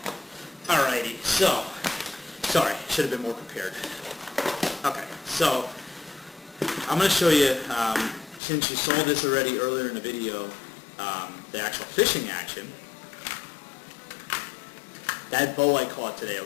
Alrighty. So, sorry, should have been more prepared. Okay. So, I'm going to show you, since you saw this already earlier in the video, the actual fishing action. That bow I caught today,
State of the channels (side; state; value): right; drops out; at 8.4 s